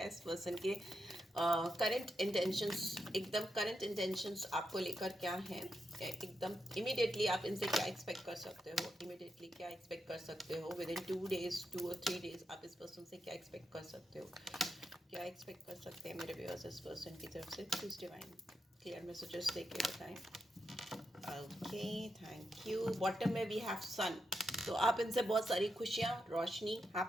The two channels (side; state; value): both; normal; correlation 0.85